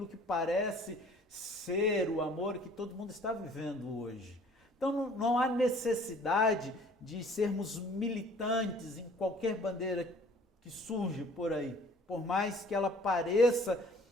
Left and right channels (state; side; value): normal; both; correlation 0.53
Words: que parece ser o amor que todo mundo está vivendo hoje. Então, não há necessidade de sermos militantes em qualquer bandeira que surge por aí, por mais que ela pareça